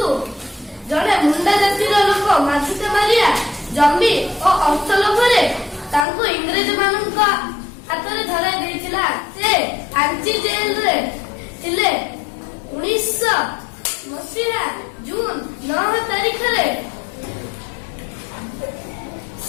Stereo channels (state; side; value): drops out; right; at 6.1 s